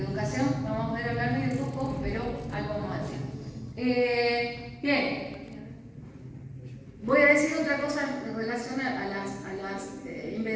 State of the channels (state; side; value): identical; both; correlation 1.00